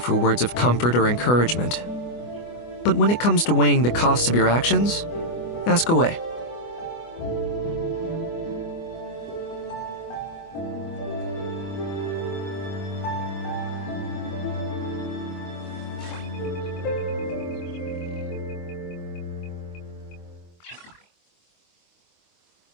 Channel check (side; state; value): right; late; 24 ms